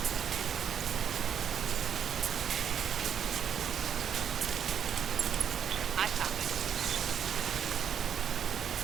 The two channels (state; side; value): quieter; left; 8.3 dB